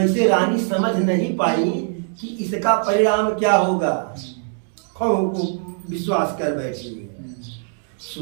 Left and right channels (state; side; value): silent; left; 65 dB below the other